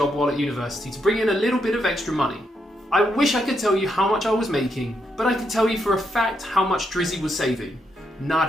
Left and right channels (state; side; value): normal; both; correlation 0.80